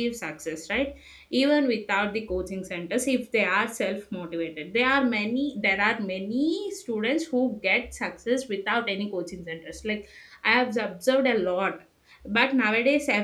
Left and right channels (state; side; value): identical; both; correlation 1.00